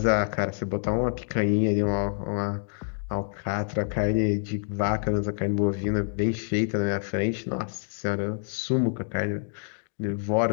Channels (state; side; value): silent; right; digital silence